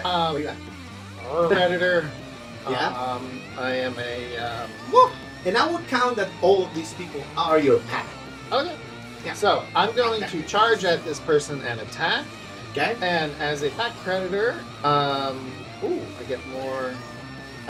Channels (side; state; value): both; identical; correlation 1.00